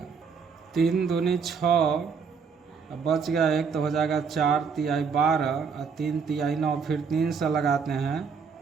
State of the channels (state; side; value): quieter; left; 5.8 dB